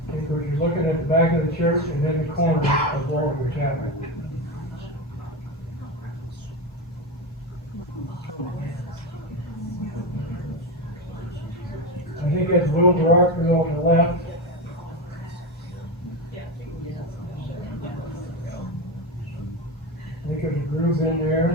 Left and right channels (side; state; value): both; normal; correlation 0.17